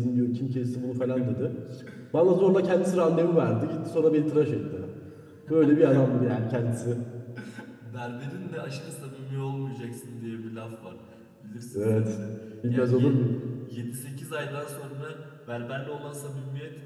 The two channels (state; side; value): identical; both; correlation 1.00